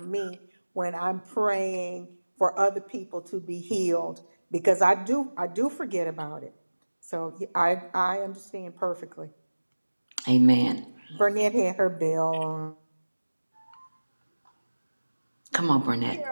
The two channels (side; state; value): both; inverted; correlation -1.00